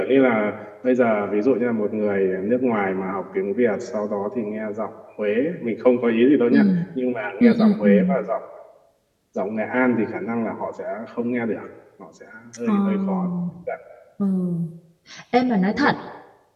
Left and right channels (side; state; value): both; identical; correlation 1.00